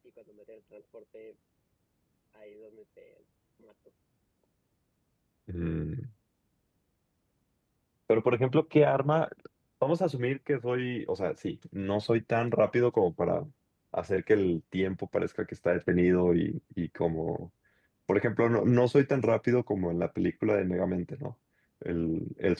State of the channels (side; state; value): both; identical; correlation 1.00